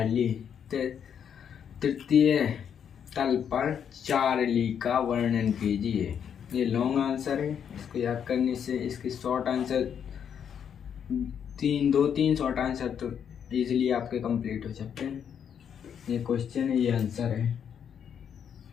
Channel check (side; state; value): right; quieter; 8.1 dB